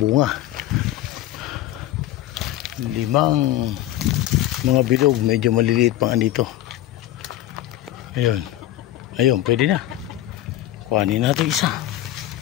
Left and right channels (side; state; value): right; quieter; 14.0 dB